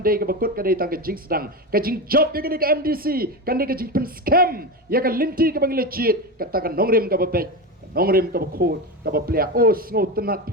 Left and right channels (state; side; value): normal; both; correlation 0.18